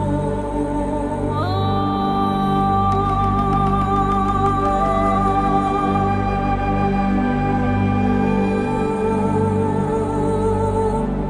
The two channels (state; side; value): identical; both; correlation 1.00